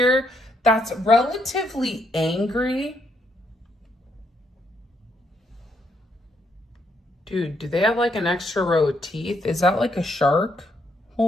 that's relatively angry. Dude, do they have like an extra row of teeth? Is that like a shark?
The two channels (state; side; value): normal; both; correlation 0.75